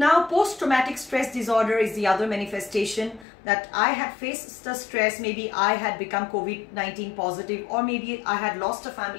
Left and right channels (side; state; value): right; drops out; at 3.2 s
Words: post-traumatic stress disorder is the other manifestation, that I had faced the stress, maybe I had become COVID-19 positive, or maybe I had lost a